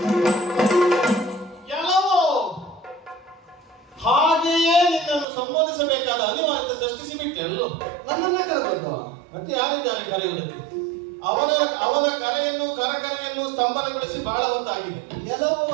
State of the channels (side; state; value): left; drops out; at 5.2 s